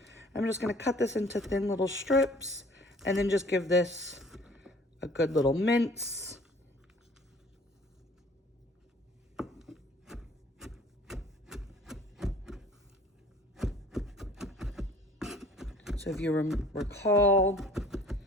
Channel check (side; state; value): both; normal; correlation 0.52